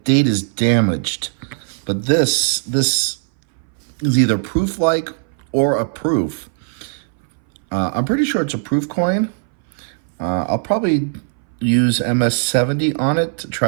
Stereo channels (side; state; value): left; silent; 62 dB below the other